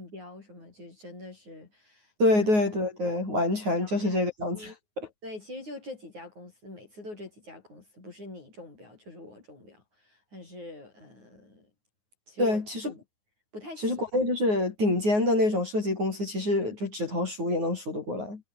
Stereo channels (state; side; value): late; left; 9.5 ms